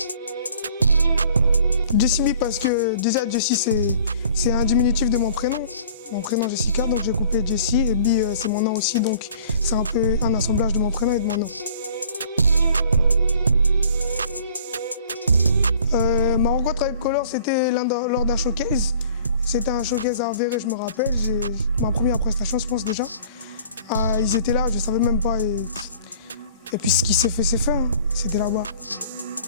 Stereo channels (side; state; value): both; inverted; correlation -0.50